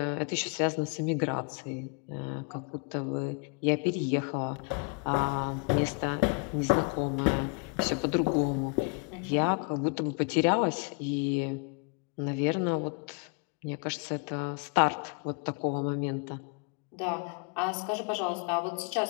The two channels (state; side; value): quieter; right; 34.7 dB